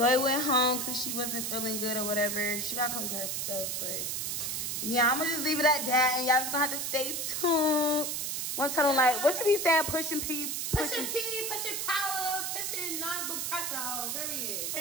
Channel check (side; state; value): right; noise; hiss, 2 dB below the sound